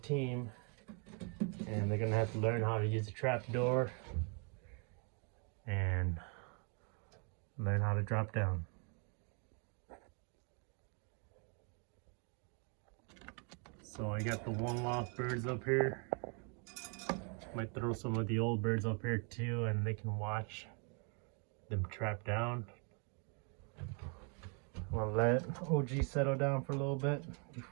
and they're gonna have to learn how to use the trap door and learn how to drop down. So I got the one loft birds up here. Might throw some of the old birds up here too, and they can watch them trap down. I'll let OG settle down for a little bit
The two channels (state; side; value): quieter; left; 37.6 dB